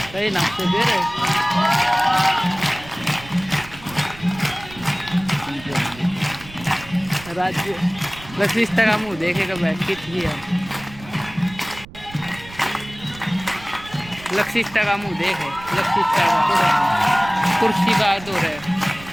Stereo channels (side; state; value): right; noise; rumble, 18 dB below the sound